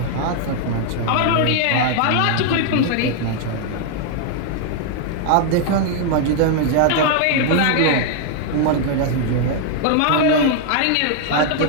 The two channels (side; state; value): both; different; correlation 0.00